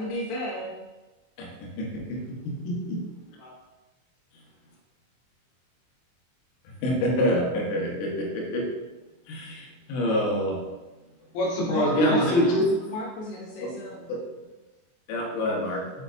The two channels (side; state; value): right; late; 23 ms